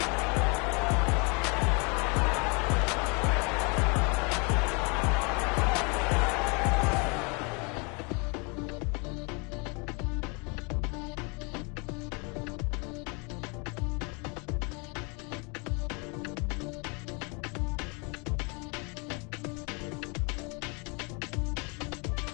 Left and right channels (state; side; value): quieter; right; 32.0 dB